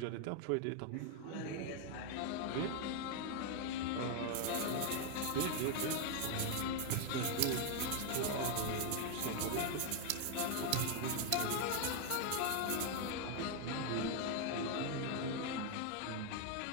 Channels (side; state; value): both; different; correlation 0.01